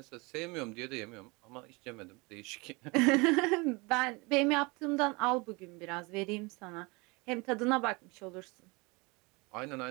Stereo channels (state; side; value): quieter; left; 26.8 dB